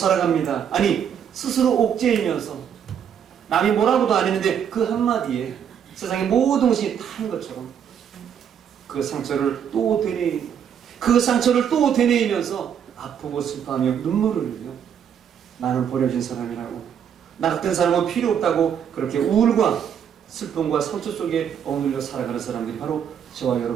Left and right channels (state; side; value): quieter; left; 8.4 dB